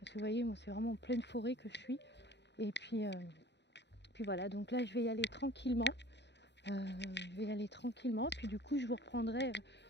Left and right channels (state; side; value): late; right; 0.51 ms